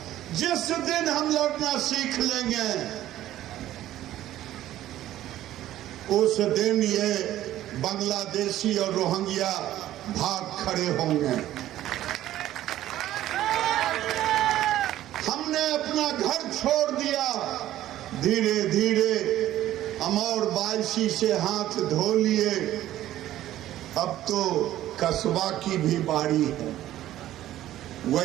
जिस दिन हम लड़ना सीख लेंगे उस दिन ये बांग्लादेशी और रोहिंग्या भाग खड़े होंगे। हमने अपना घर छोड़ दिया, धीरे धीरे हम और 22 से हाथ धो लिए। अब तो कस्बा की भी बारी है,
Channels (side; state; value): left; quieter; 13.5 dB